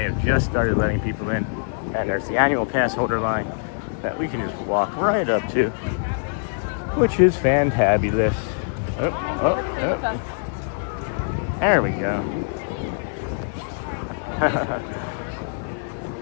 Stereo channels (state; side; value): silent; right; digital silence